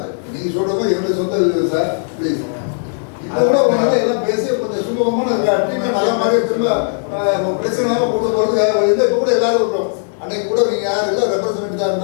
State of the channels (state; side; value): silent; right; digital silence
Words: நீங்க சொல்றது என்னுடைய சொந்த வீடு சார். ப்ளீஸ் எல்லாம் பேசி கொஞ்சம் சுமூகமான பிரச்சனை போறதுக்காக இப்ப கூட எல்லாரும் இருக்கிறோம். அன்னைக்கு கூட நீங்க யாரு இல்லை ரெப்ரஸன்டேட்டிவ் தான்